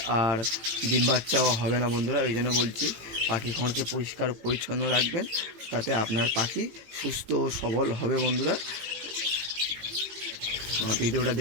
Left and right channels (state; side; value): late; left; 18 ms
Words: আর ডিম বাচ্চাও হবে না বন্ধুরা। ওই জন্য বলছি পাখি ঘরকে পরিষ্কার পরিচ্ছন্ন রাখবেন, তাতে আপনার পাখি সুস্থ ও সবল হবে বন্ধুরা। ভিডিওটা